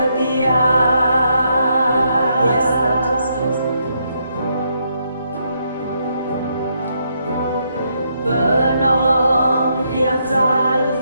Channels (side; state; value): both; inverted; correlation -0.76